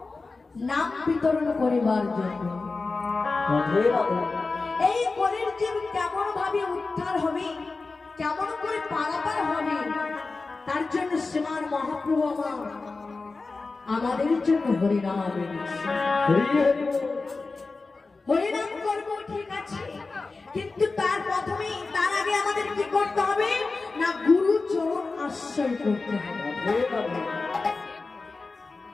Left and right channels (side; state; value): right; quieter; 3.8 dB